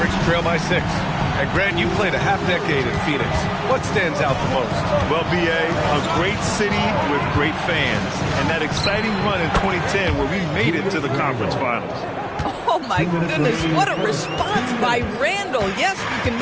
trail by 6. And Grant, you played a half-decade in Phoenix. What stands out the most? Well, B.A., a great city with great fans. And that exciting run in 2010 where we made it to the conference finals. Oh, my goodness. What a response by Randle. Yes, you can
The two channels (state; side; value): identical; both; correlation 1.00